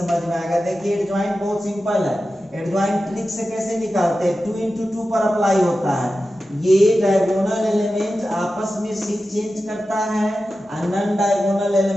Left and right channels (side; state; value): both; normal; correlation 0.93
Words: में आएगा। देखिए एडजॉइंट बहुत सिंपल है, एडजॉइंट ट्रिक से कैसे निकालते हैं, 2 × 2 पर अप्लाई होता है, ये डायगोनल एलिमेंट आपस में शिफ्ट चेंज करता है और नॉन डायगोनल